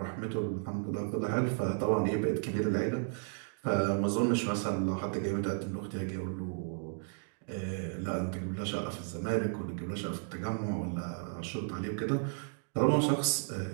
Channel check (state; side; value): silent; left; 55 dB below the other